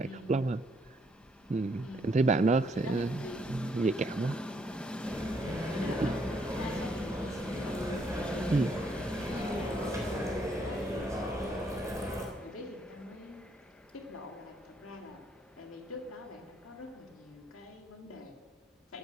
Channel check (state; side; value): normal; both; correlation 0.71